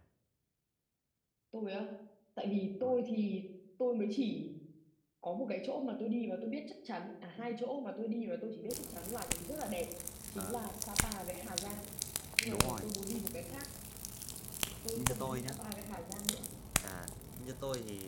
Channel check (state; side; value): identical; both; correlation 1.00